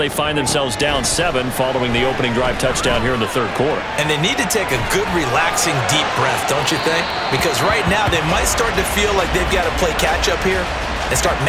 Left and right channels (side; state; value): both; identical; correlation 1.00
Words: find themselves down 7 following the opening drive touchdown here in the third quarter. And they need to take a good, relaxing, deep breath, don't you think? Because right now they might start to feel like they've got to play catch-up here and start